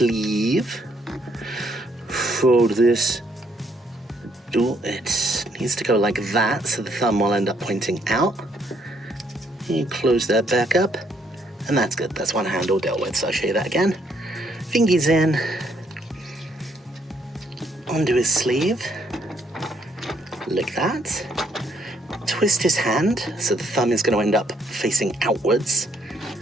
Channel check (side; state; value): both; normal; correlation 0.71